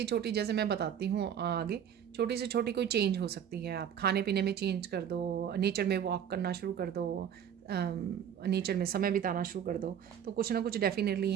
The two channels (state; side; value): quieter; left; 8.9 dB